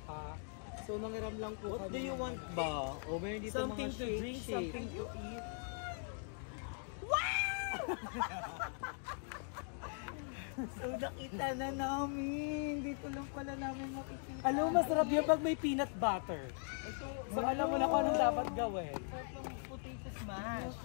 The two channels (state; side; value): silent; right; 51 dB below the other